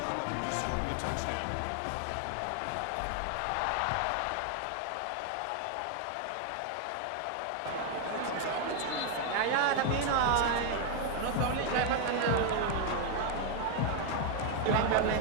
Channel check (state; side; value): different; both; correlation 0.00